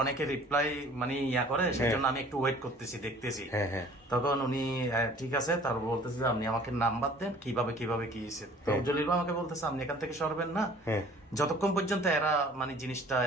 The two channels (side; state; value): both; normal; correlation 0.51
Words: রিপ্লাই মানে ইয়া করে, সেই জন্য আমি একটু ওয়েট করতেছি, দেখতেছি। হ্যাঁ, হ্যাঁ। তখন উনি ঠিক আছে, তারপর বলতেছে যে আপনি আমাকে নাম্বার দেন, কিভাবে কি হয়েছে। তো জলিল ভাই আমাকে বলতেছে আপনি এখান থেকে সরবেন না যতক্ষণ পর্যন্ত এরা মানে জিনিসটা